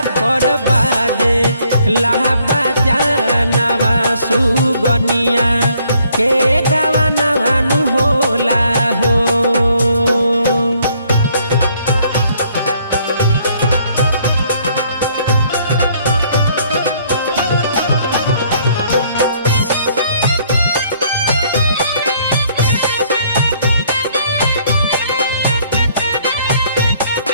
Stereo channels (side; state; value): both; inverted; correlation -0.65